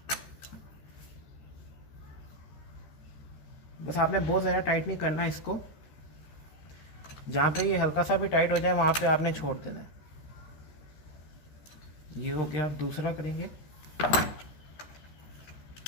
बस आपने बहुत ज़्यादा टाइट नहीं करना है इसको, जहाँ पे ये हल्का सा भी टाइट हो जाए वहाँ पे आपने छोड़ देना है। ये हो गया, दूसरा करेंगे।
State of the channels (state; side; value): late; right; 13 ms